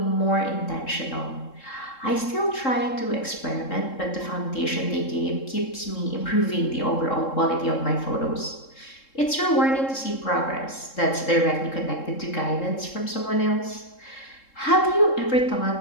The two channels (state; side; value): late; right; 3.7 ms